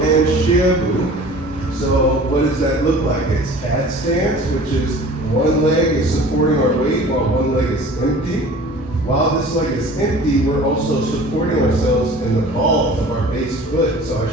and Xie Bu. So what does that look like? It's cat stance, which is one leg is supporting our weight while one leg is empty. While this leg is empty, we're also supporting ourselves in the ball of our base foot. So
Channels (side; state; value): both; normal; correlation 0.44